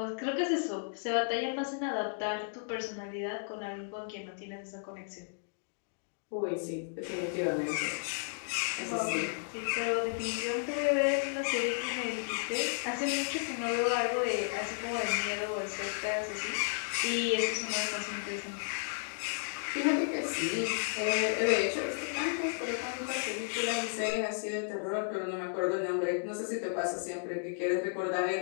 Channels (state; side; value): silent; right; digital silence